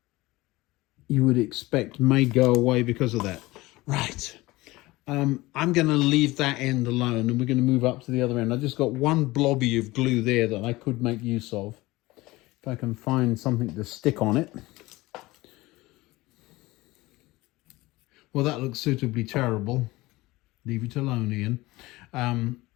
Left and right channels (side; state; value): right; quieter; 20.1 dB